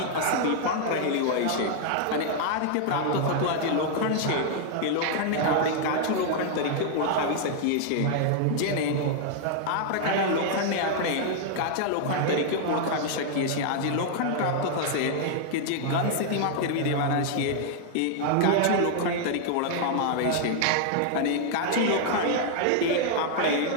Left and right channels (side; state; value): both; different; correlation 0.00